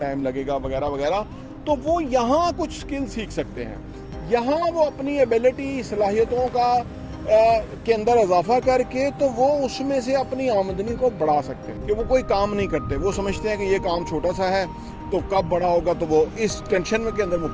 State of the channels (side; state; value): both; identical; correlation 1.00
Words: लगेगा वगैरह वगैरह, तो वो यहाँ कुछ स्किल सीख सकते हैं। यहाँ वो अपनी एबिलिटी, सलाहियतों का के अंदर इजाफा करके तो वो उसमें से अपनी आमदनी को बढ़ा सकते हैं। कि वो कोई काम नहीं करते, वो समझते हैं कि ये काम छोटा सा है तो कब बड़ा होगा, तो वो इस टेंशन में के अंदर